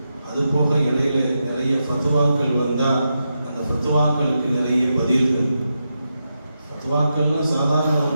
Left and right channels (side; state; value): both; inverted; correlation -0.87